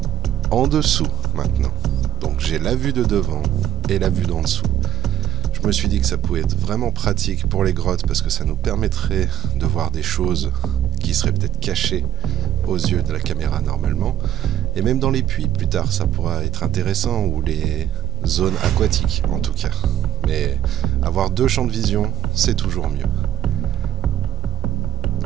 en dessous maintenant. Donc j'ai la vue de devant et la vue d'en dessous. Je me suis dit que ça pouvait être vraiment pratique pour les grottes parce que ça nous permettrait de voir des choses qui seraient peut-être cachées aux yeux de la caméra normalement. Et même dans les puits, plus tard, ça pourra être intéressant, ou les zones aquatiques en tout cas. Mais avoir deux champs de vision, c'est toujours mieux.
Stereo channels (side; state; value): left; quieter; 10.3 dB